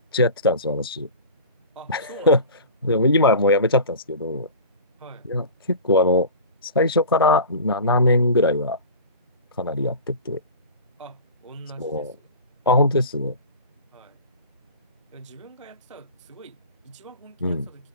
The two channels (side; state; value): both; inverted; correlation -0.35